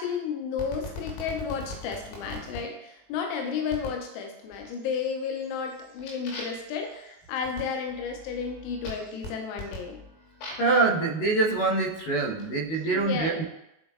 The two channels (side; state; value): right; late; 19 ms